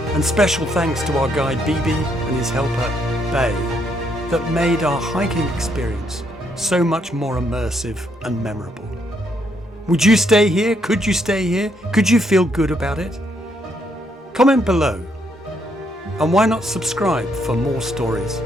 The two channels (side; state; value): both; normal; correlation 0.73